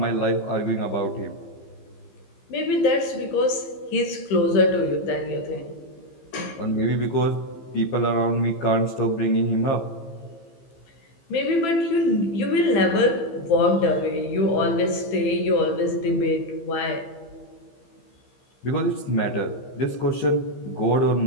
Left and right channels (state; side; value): late; right; 15 ms